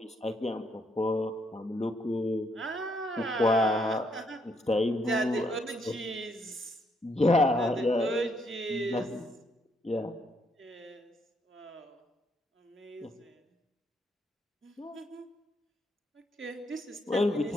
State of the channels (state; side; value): normal; both; correlation 0.73